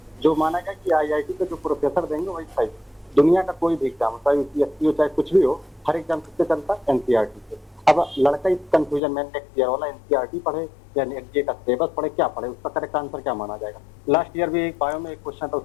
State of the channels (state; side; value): drops out; right; at 9.0 s